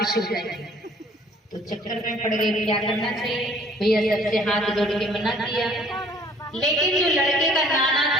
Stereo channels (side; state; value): both; normal; correlation 0.56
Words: हो जाएगी। तो चक्कर में पड़ गए, क्या करना चाहिए। भैया सबसे हाथ जोड़ के मना किया, लेकिन जो लड़के का नाना